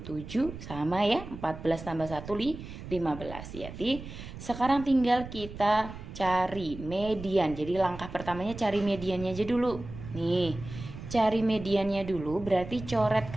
7, sama ya, 14 tambah 1, 15. Jadi sekarang tinggal kita cari median. Jadi langkah pertamanya cari mediannya aja dulu. Nih, cari mediannya dulu berarti coret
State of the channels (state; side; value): noise; right; rumble, 12 dB below the sound